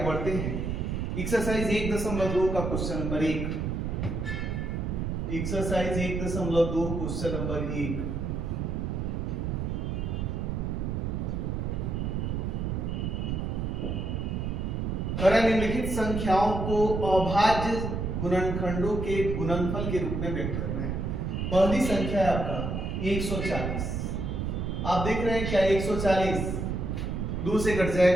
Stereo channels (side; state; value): right; noise; rumble, 2 dB below the sound